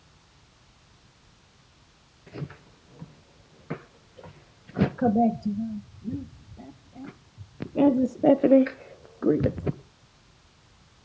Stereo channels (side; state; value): both; identical; correlation 1.00